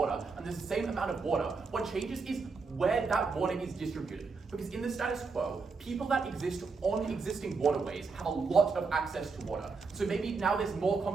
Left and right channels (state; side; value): quieter; left; 4.6 dB